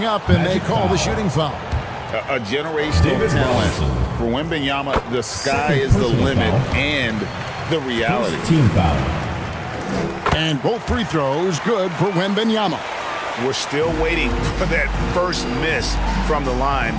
up, and they call the shooting foul. A generational talent. For Wembanyama, the sky is the limit and the reality. Team foul. And both free throws good for Wembanyama. We're still waiting for that first miss from the line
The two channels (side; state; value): both; identical; correlation 1.00